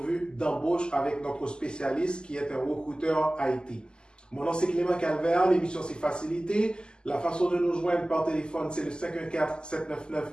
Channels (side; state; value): right; late; 0.047 ms